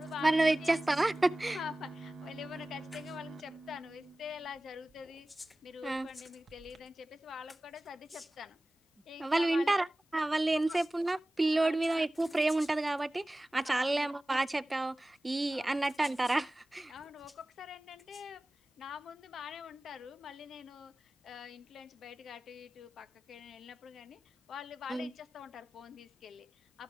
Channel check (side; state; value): both; normal; correlation 0.97